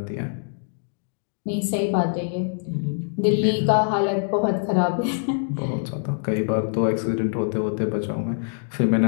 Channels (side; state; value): right; silent; digital silence